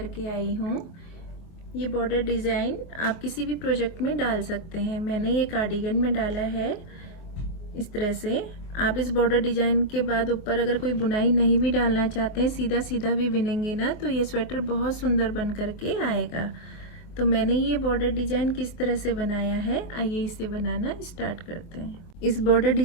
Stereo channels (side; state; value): right; late; 24 ms